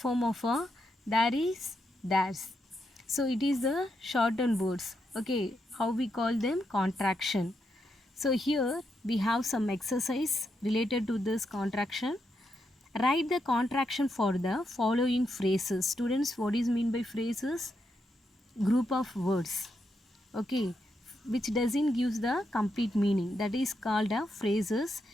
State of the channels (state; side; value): normal; both; correlation 0.82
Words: of there is? There's. So it is the shortened words. Okay, how we call them? Contraction. So here we have some exercise related to this contraction. Write the contraction for the following phrases. Students, what is mean by phrases? Group of words. Okay, which doesn't give the complete meaning. That is called phrases.